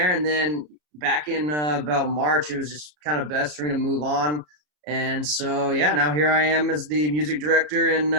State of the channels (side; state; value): left; late; 33 ms